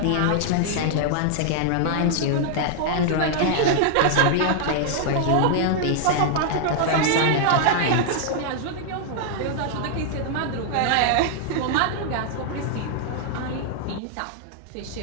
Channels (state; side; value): different; both; correlation -0.01